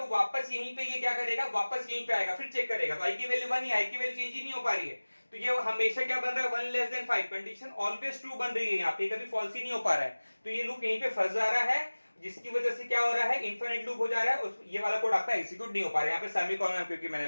वापस यहीं पे ये क्या करेगा, वापस यहीं पे आएगा, फिर चेक करेगा, तो आई की वैल्यू 1 ही, आई की वैल्यू चेंज ही नहीं हो पा रही है, तो ये हमेशा क्या बन रहा है 1 less than 5, condition always true बन रही है यहाँ पे, कभी फॉल्स ही नहीं हो पा रहा है, तो ये लूप यहीं पे फंस जा रहा है, जिसकी वजह से क्या हो रहा है, इनफिनिट लूप हो जा रहा है, ये वाला कोड आपका एग्जीक्यूट नहीं हो पा रहा है, यहाँ पे सेमीकोलन क्योंकि मैंने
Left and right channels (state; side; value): inverted; both; correlation -1.00